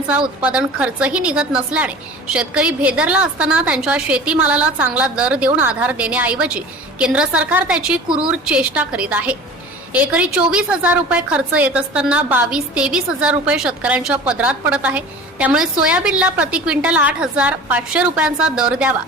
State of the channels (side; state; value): both; normal; correlation 0.39